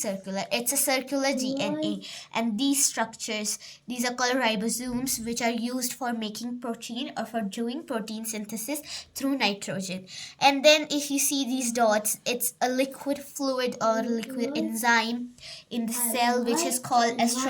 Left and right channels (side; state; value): both; identical; correlation 1.00